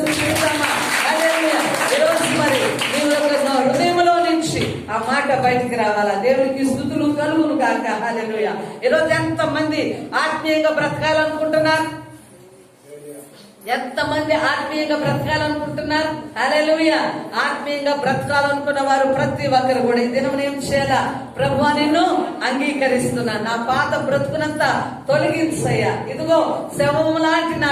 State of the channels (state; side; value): identical; both; correlation 1.00